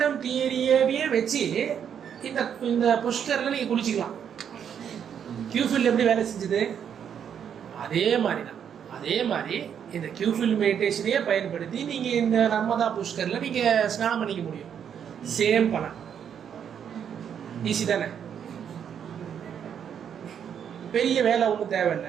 தியரியவே வச்சு இந்த இந்த புஷ்கரில் நீங்கள் குளிச்சிக்கலாம். கியூஃபீல்டு எப்படி வேலை செஞ்சுது? அதே மாதிரி தான். அதே மாதிரி இந்த கியூஃபீல்டு மெடிடேஷனையே பயன்படுத்தி நீங்கள் இந்த நர்மதா புஷ்கரில் நீங்கள் ஸ்நானம் பண்ணிக்க முடியும். சேம் பலன். ஈஸி தானே? பெரிய வேலை ஒன்றும்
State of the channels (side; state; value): left; quieter; 8.3 dB